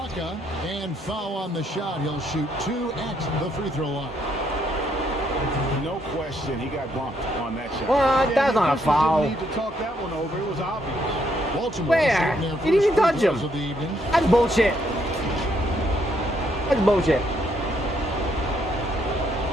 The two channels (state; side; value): normal; both; correlation 0.72